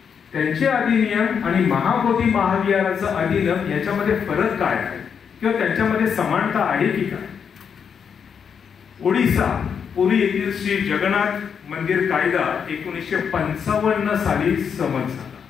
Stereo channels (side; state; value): right; quieter; 7.0 dB